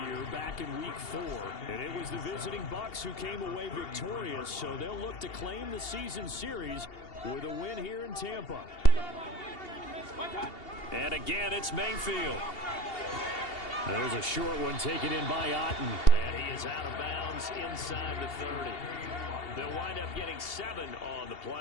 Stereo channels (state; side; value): late; right; 2.8 ms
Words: year, back in week 4. And it was the visiting Bucs who came away victorious, so they'll look to claim the season series with a win here in Tampa. And again, it's Mayfield. There's a short one taken in by Otten. And he is out of bounds inside the 30. They'll wind up getting 7 on the